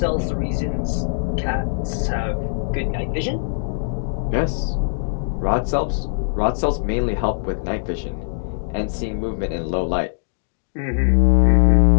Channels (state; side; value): silent; right; digital silence